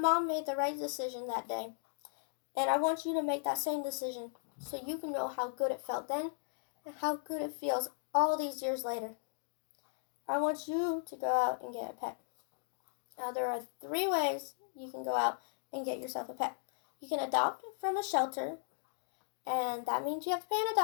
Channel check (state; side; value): silent; right; digital silence